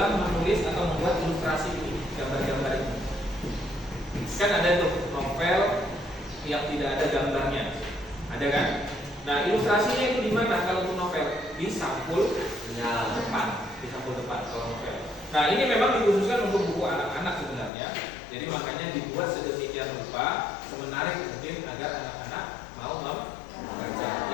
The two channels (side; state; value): right; drops out; at 17.7 s